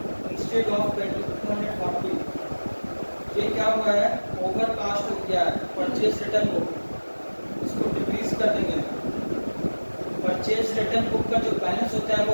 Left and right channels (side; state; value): both; inverted; correlation -1.00